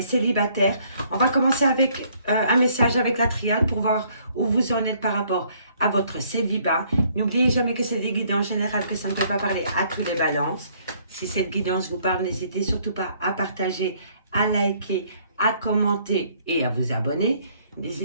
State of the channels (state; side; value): inverted; both; correlation -0.64